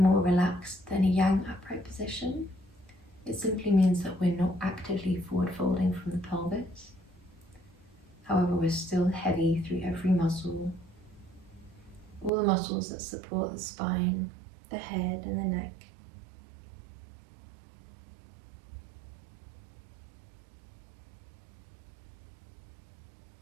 relaxed than a yang upright position. It simply means that we're not actively forward folding from the pelvis. However, we're still heavy through every muscle, all the muscles that support the spine, the head and the neck.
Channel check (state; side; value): drops out; left; at 12.3 s